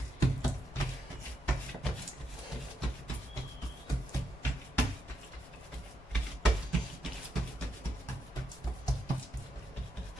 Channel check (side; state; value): both; normal; correlation 0.81